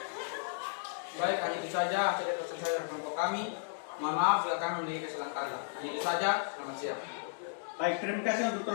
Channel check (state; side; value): silent; right; digital silence